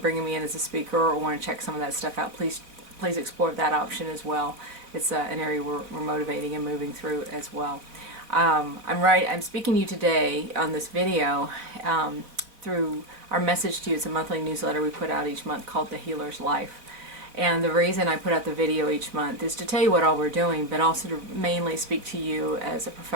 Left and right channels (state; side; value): late; left; 3.9 ms